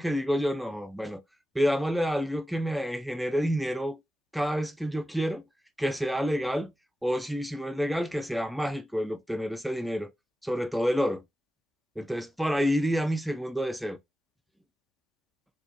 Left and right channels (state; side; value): normal; both; correlation 0.94